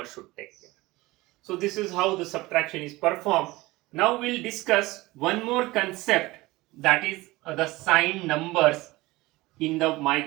should take care. So this is how the subtraction is performed. Now we'll discuss one more concept, that is the signed numbers in the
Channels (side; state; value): left; quieter; 20.2 dB